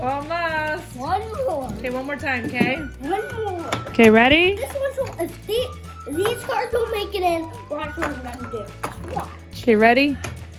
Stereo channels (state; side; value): identical; both; correlation 1.00